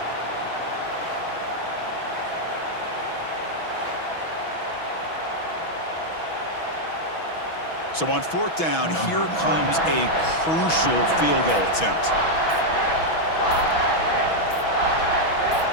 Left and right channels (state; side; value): late; right; 6.1 ms